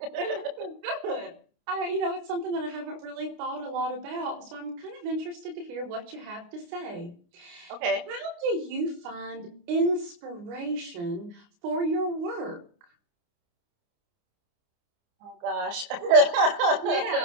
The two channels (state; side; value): late; left; 29 ms